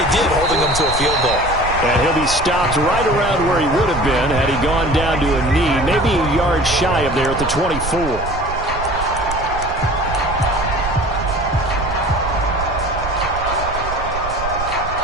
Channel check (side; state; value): right; noise; rumble, 9 dB below the sound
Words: did, holding them to a field goal. And he'll be stopped right around where he would have been had he gone down to a knee, maybe a yard shy of there at the 24.